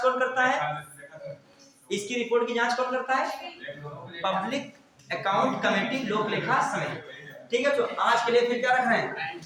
कौन करता है, इसकी रिपोर्ट की जांच कौन करता है, पब्लिक अकाउंट कमेटी लोक लेखा समिति। ठीक है, तो आज के लिए फिर क्या रख रहे हैं,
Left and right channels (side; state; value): both; identical; correlation 1.00